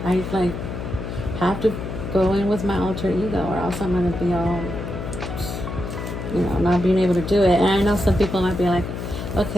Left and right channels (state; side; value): noise; left; hum, 6 dB below the sound